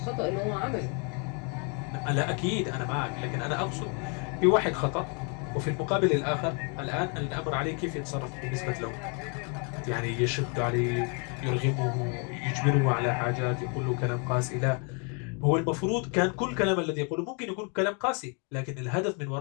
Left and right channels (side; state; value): right; quieter; 36.1 dB